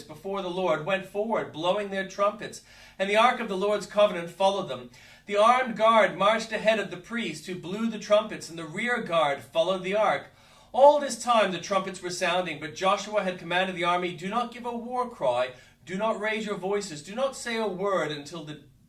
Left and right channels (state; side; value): identical; both; correlation 1.00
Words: before the Lord went forward, blowing their trumpets, and the ark of the Lord's covenant followed them. The armed guard marched ahead of the priests who blew the trumpets, and the rear guard followed the ark. All this time the trumpets were sounding, but Joshua had commanded the army, "Do not give a war cry, do not raise your voices, do not say a word until the